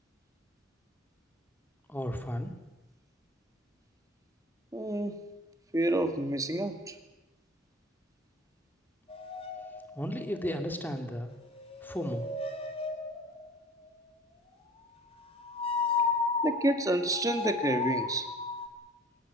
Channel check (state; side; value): normal; both; correlation 0.48